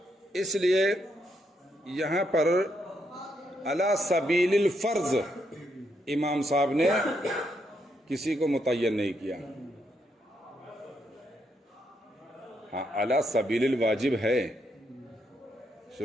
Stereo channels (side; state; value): both; normal; correlation 0.78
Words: اس لیے یہاں پر علی سبیل الفرض امام صاحب نے کسی کو متعین نہیں کیا. ہاں علی سبیل الواجب ہے